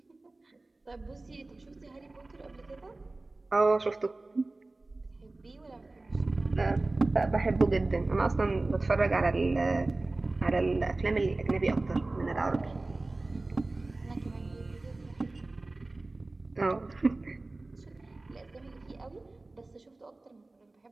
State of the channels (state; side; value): quieter; left; 3.1 dB